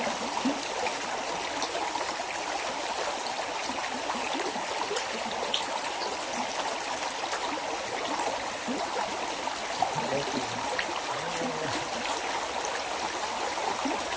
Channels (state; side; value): identical; both; correlation 1.00